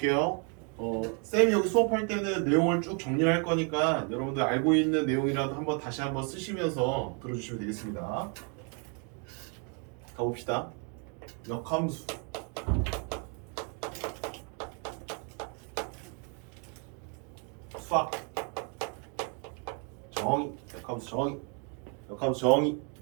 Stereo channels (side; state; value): left; quieter; 38.3 dB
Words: 쌤이 여기 수업할 때는 내용을 쭉 정리할 거니까 여러분들 알고 있는 내용이라도 한번 다시 한번 쓰시면서 들어주시면 되겠습니다. 가봅시다. 역함수. 수학 정의, 역함수 정의, 역함수 정의,